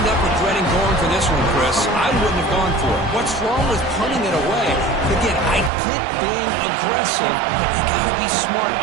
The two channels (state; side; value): drops out; left; at 5.7 s